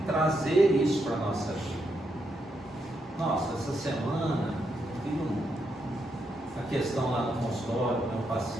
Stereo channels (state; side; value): normal; both; correlation 0.81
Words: trazer isso para a nossa vida. Nossa, essa semana tive a questão lá no consultório, meu